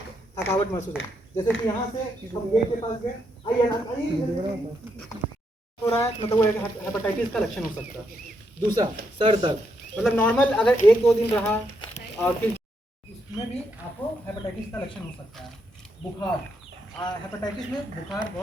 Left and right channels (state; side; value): normal; both; correlation 0.78